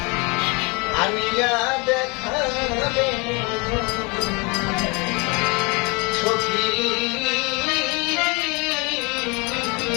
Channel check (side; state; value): right; quieter; 29.2 dB